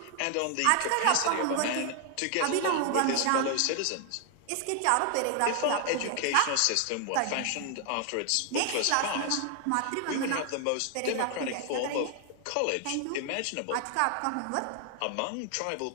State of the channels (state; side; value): different; both; correlation 0.00